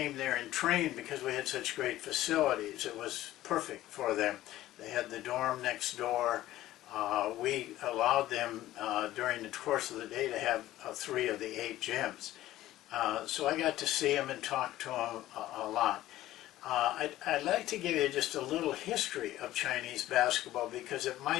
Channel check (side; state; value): right; quieter; 14.9 dB